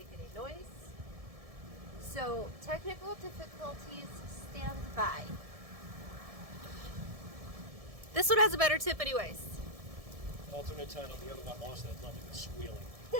any noise. So technical difficulties stand by. This one has a better tip anyways. Alternate title, the other one lost that lovely squealing.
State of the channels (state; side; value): late; left; 1.7 ms